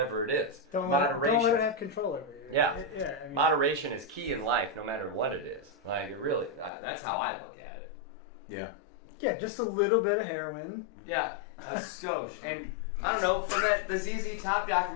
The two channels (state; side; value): drops out; right; at 6.7 s